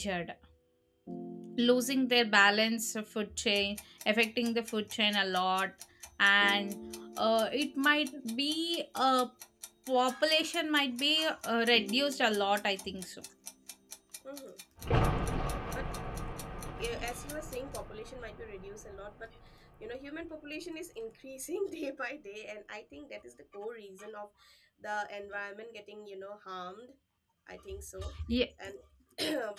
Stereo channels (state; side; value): identical; both; correlation 1.00